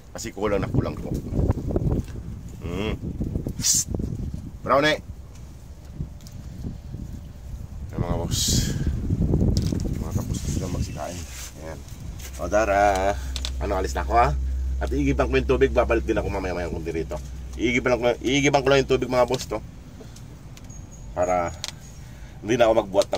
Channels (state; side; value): identical; both; correlation 1.00